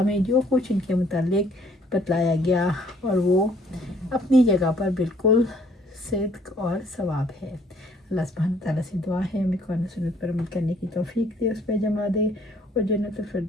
में जो कुछ इनके मुतालिक बतलाया गया और वो अपनी जगह पर बिल्कुल सिद्क और सवाब है। अल्लाह सुब्हानहू तआला से दुआ है हमें कुरान सुन्नत पर अमल करने की तौफीक दे, उस पर जमा दे और जन्नतुल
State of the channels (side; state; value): both; normal; correlation 0.61